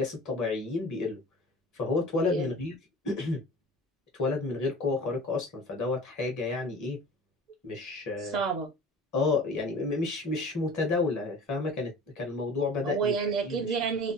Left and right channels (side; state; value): both; normal; correlation 0.41